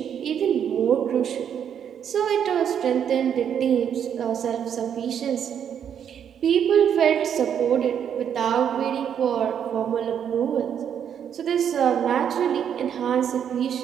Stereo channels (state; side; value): quieter; left; 8.6 dB